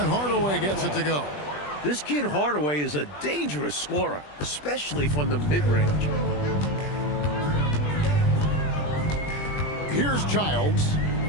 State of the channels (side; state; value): right; late; 20 ms